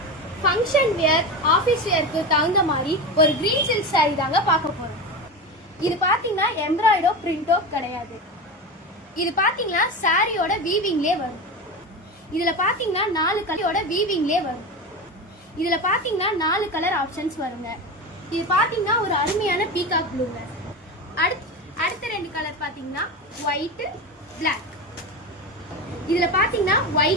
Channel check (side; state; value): both; normal; correlation 0.23